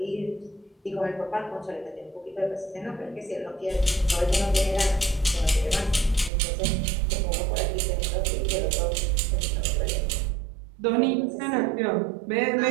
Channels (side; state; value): left; drops out; at 6.3 s